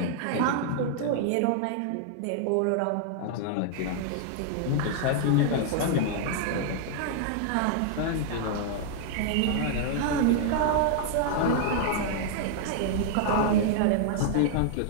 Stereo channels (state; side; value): different; both; correlation -0.01